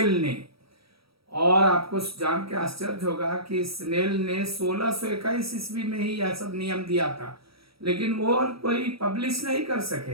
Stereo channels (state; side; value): late; left; 0.76 ms